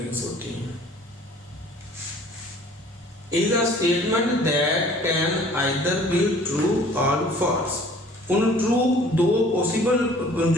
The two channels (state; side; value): normal; both; correlation 0.52